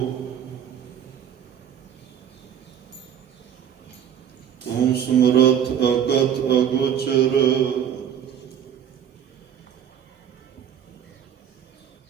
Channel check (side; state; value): left; quieter; 9.1 dB